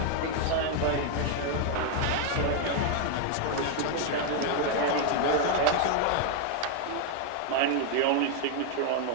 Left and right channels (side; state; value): both; different; correlation 0.00